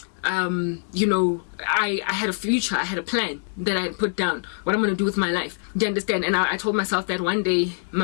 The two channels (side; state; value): right; silent; digital silence